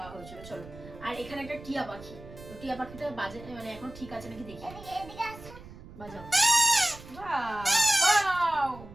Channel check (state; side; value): noise; right; rumble, 17 dB below the sound